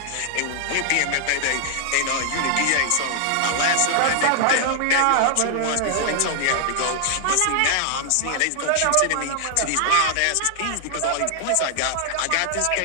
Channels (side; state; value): both; different; correlation 0.00